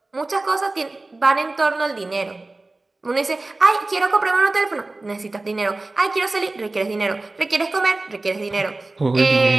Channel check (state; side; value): quieter; left; 3.1 dB